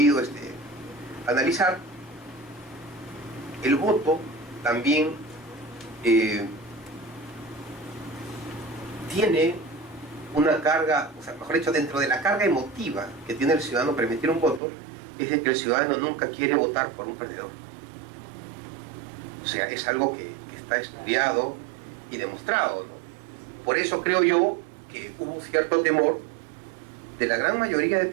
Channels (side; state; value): left; drops out; at 14.6 s